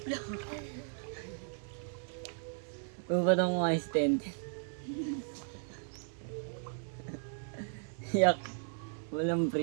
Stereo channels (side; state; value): left; silent; 54 dB below the other